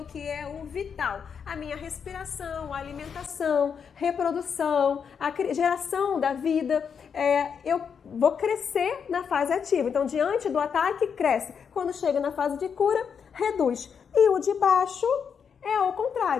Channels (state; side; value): quieter; right; 6.8 dB